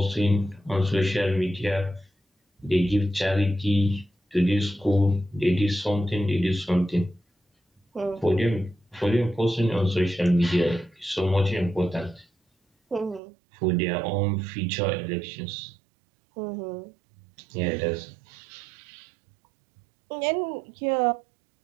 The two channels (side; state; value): left; drops out; at 13.2 s